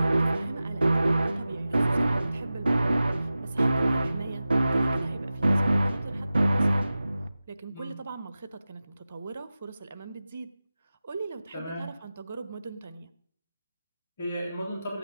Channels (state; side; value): inverted; both; correlation -0.95